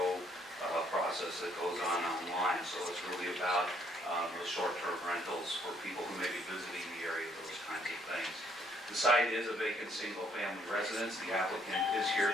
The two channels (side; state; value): both; normal; correlation 0.66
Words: process that goes on online. So it's really about those short-term rentals for people who may be visiting the area, those kinds of things. The site is a vacant single-family residence. The applicant is